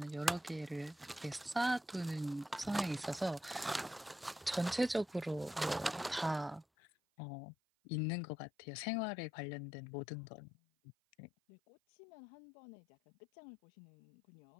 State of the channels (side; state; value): right; drops out; at 6.7 s